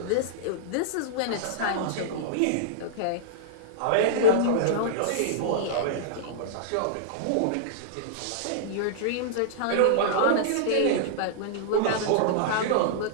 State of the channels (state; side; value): different; both; correlation -0.02